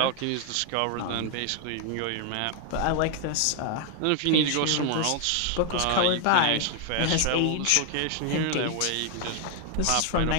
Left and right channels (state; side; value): different; both; correlation 0.00